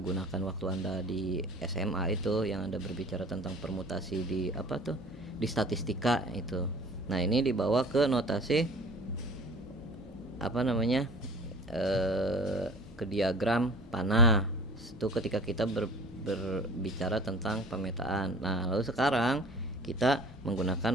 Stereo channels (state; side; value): normal; both; correlation 0.45